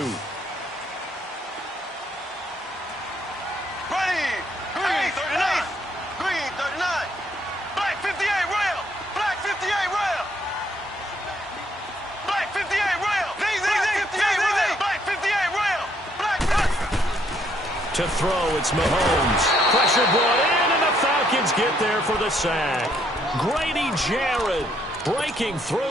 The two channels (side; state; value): both; normal; correlation 0.70